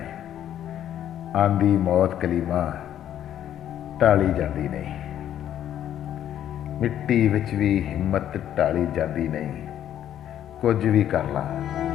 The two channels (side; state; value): right; quieter; 10.9 dB